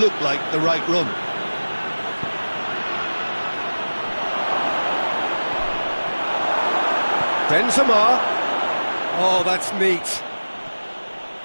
like the right run. Benzema. Oh, that's neat.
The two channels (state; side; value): inverted; both; correlation -1.00